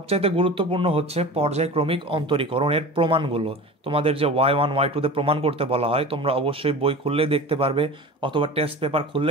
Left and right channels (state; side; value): normal; both; correlation 0.35